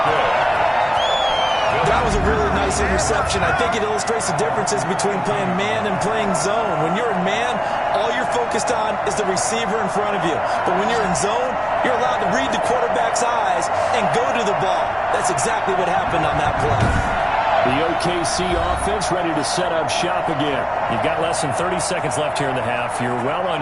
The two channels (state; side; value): identical; both; correlation 1.00